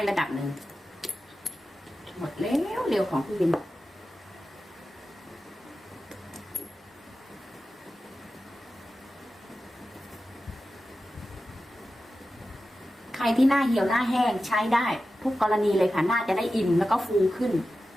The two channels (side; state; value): both; normal; correlation 0.93